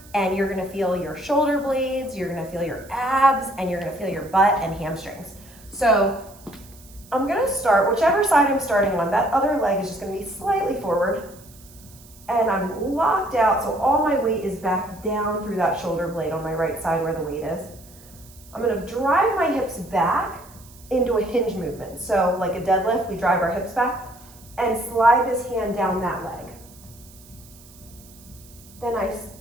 and you're going to feel your shoulder blades, you're going to feel your abs, and you're going to feel your butt and hamstrings. So I'm going to start, whichever side I'm starting on, that other leg is just going to be slightly forward, and I'm locked out, so all my weight is back down through that shoulder blade on my right side where the weight is. I'm going to drive my hips back into a hinge movement. So like a deadlift, we drive our hips back and slide this hand down that leg. Then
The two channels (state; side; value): noise; right; hiss, 23 dB below the sound